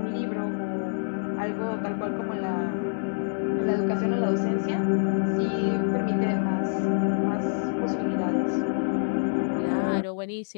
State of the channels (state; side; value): silent; right; digital silence